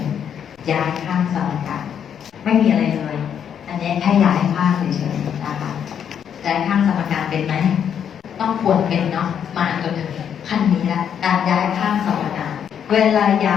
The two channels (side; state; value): right; quieter; 8.5 dB